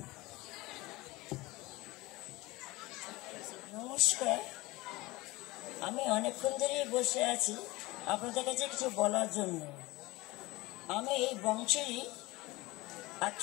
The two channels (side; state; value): right; quieter; 21.3 dB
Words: নমস্কার, আমি অনেকক্ষণ ধরেই বসে আছি আপনাদের কাছে কিছু বলার জন্য। আমি এই বংশেরই এক